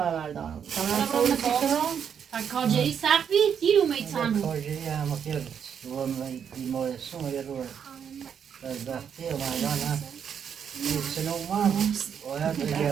بردارم. برا تا کارجری سخت بید دیر اومید تنو کارجری هم خیلی رو بیمارستان یه رو از وقتی اومدن هم سنو ما باید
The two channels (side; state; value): left; quieter; 7.8 dB